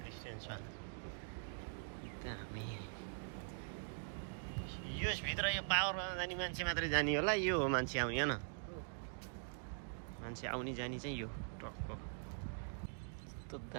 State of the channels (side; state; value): left; silent; digital silence